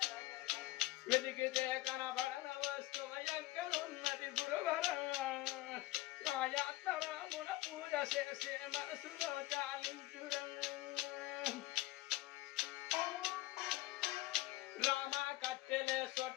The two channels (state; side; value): quieter; right; 18.3 dB